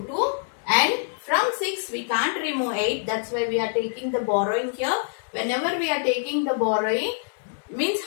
2. And from 6 we can't remove 8. That's why we are taking the borrowing here. Whenever we are taking the borrowing, means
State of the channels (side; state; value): right; silent; digital silence